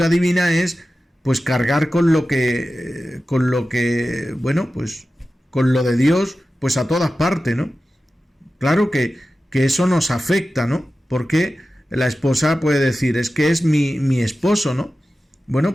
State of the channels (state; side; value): normal; both; correlation 0.94